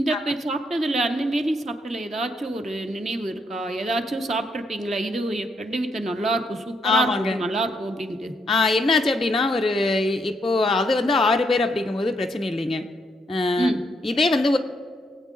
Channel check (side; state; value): both; normal; correlation 0.76